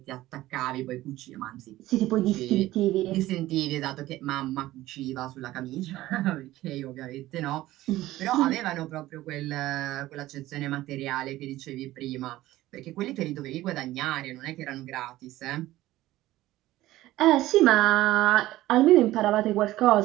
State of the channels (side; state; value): left; quieter; 16.1 dB